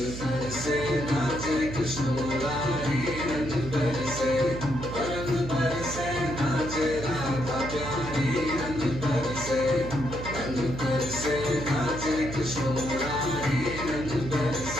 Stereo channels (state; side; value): noise; right; hum, 8 dB below the sound